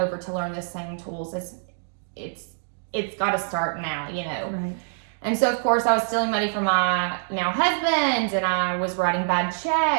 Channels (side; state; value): left; silent; digital silence